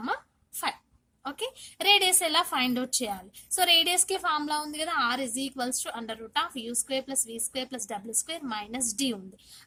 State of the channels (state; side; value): identical; both; correlation 1.00